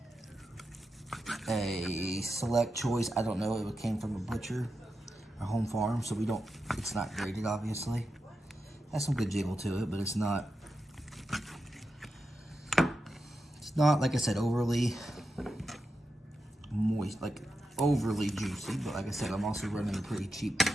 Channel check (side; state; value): both; normal; correlation 0.89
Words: a select choice. I don't know, it came from a butcher, a home farm, so it's not graded, obviously. Has some good jiggle to it, but it's not, like I said, overly moist, like overly juicy. But like I said, I'm also running a pretty cheap